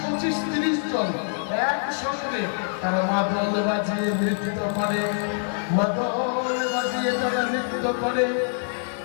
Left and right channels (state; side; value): silent; right; digital silence